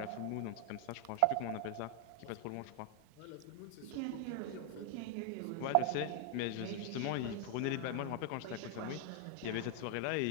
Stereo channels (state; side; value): different; both; correlation 0.00